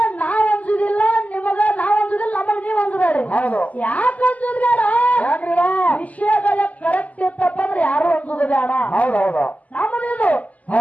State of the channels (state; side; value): late; right; 0.075 ms